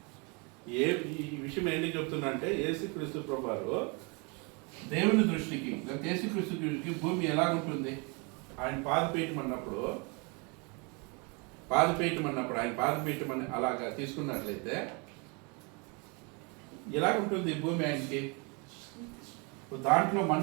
ఈ విషయం ఏంటి చెప్తున్నా అంటే యేసుక్రీస్తు ప్రభువారు దేవుని దృష్టికి, యేసుక్రీస్తు దృష్టికి భూమి ఎలాగుంటుంది? ఆయన పాదపీఠం అన్నప్పుడు ఆయన పాదపీఠం అని అలాగా తీసుకున్నట్లయితే ఎలాగుంటుంది భూమి ఆయనకి? దాంట్లో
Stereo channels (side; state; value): left; quieter; 31.6 dB